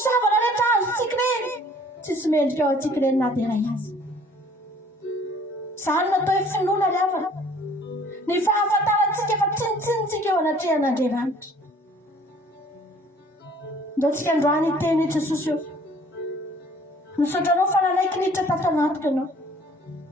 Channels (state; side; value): normal; both; correlation 0.55